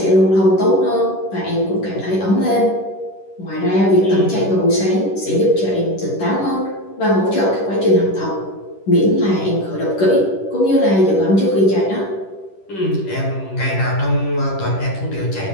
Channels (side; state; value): right; late; 10 ms